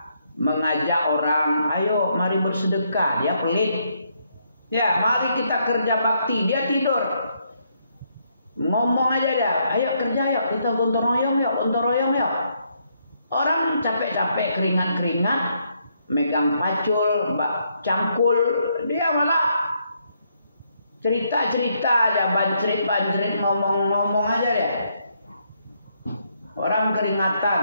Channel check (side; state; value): both; inverted; correlation -0.74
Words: mengajak orang, ayo mari bersedekah. Dia pelit. Ya, mari kita kerja bakti. Dia tidur. Ngomong aja dia. Ayo kerja yuk. Kita gotong royong yuk. Gotong royong yuk. Orang capek-capek keringat-keringat. Megang pacul, cangkul. Dia malah cerita-cerita aja. Bancrit-bancrit. Ngomong-ngomong aja dia. Orang